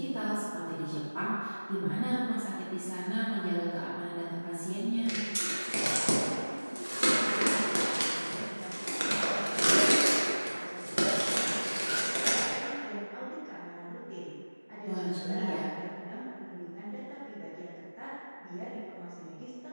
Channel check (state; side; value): inverted; both; correlation -1.00